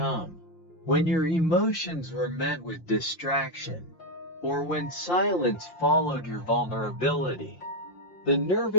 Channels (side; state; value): right; late; 5.7 ms